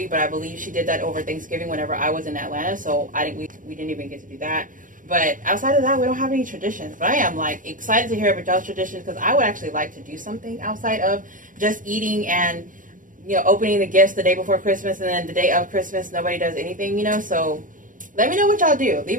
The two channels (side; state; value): left; late; 0.38 ms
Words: But I believe she did that over Thanksgiving whenever I was in Atlanta. So we didn't even get to do that. But outside of that, we don't have any traditions. But I am like excited to hear about y'all's traditions because I would actually like to do something outside of just eating and, you know, opening the gifts the day before Christmas and then the day of Christmas nobody does anything, you know. So let me know what y'all do. Leave